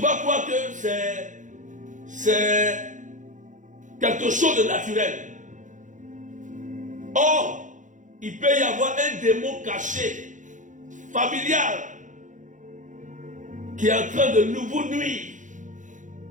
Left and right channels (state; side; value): late; left; 0.37 ms